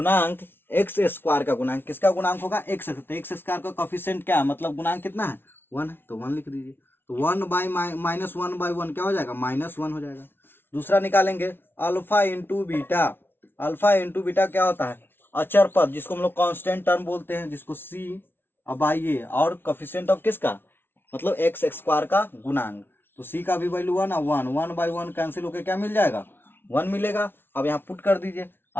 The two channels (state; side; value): late; right; 0.11 ms